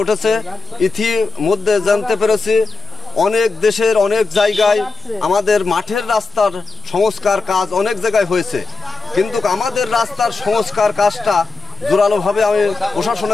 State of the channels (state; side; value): quieter; right; 4.1 dB